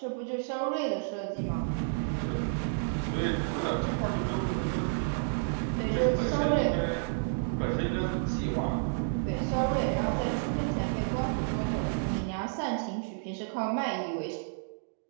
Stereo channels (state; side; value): silent; left; digital silence